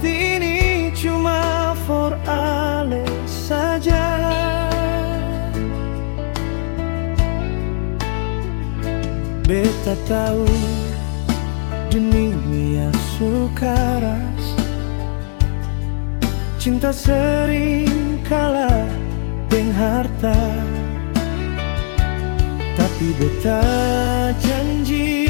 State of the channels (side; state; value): right; silent; digital silence